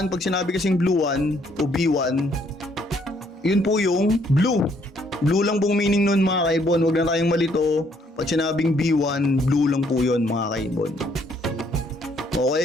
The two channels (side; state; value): both; normal; correlation 0.67